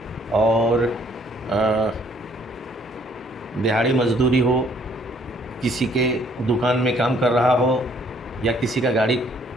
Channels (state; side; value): normal; both; correlation 0.62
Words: और दिहाड़ी मजदूरी हो, किसी के दुकान में काम कर रहा हो या किसी का गाड़ी